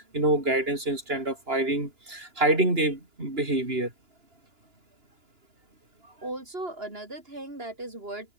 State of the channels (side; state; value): left; late; 2.9 ms